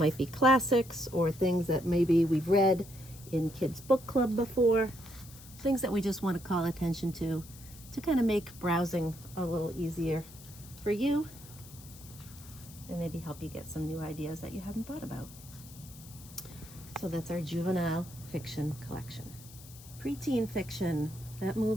be classics or things that maybe we've read in kids book club before, things that we just want to call attention to kind of make browsing a little easier for you and maybe help you get some new ideas that you hadn't thought about. So that's our juvenile fiction collection. Preteen fiction, that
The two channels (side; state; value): left; noise; hiss, 19 dB below the sound